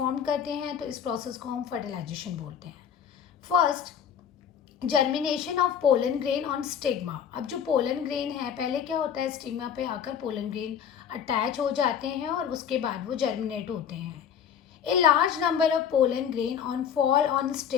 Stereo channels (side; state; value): right; quieter; 8.3 dB